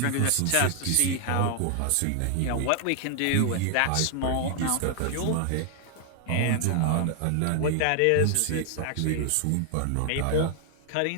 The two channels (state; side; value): different; both; correlation 0.00